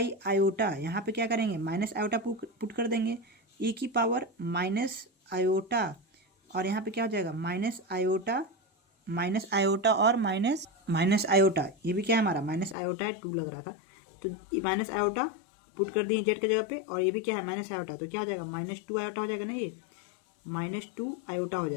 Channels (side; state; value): right; drops out; at 12.8 s